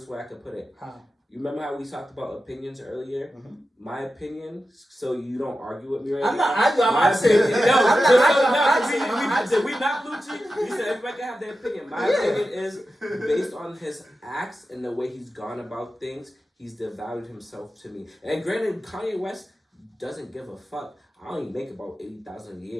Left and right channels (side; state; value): both; normal; correlation 0.92